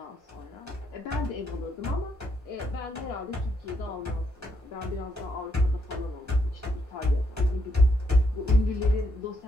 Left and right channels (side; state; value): both; normal; correlation 0.76